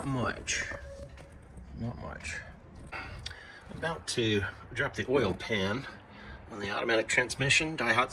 much. Not much. I'm about to drop the oil pan on the automatic transmission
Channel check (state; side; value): identical; both; correlation 1.00